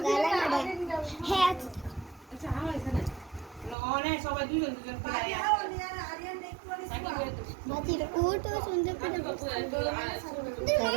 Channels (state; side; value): drops out; left; at 3.8 s